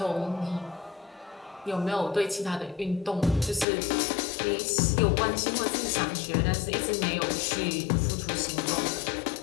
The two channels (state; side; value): drops out; right; at 3.7 s